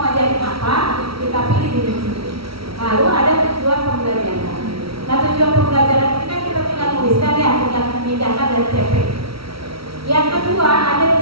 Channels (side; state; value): left; late; 0.75 ms